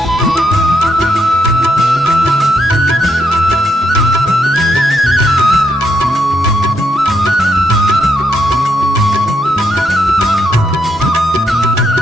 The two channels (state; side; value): normal; both; correlation 0.78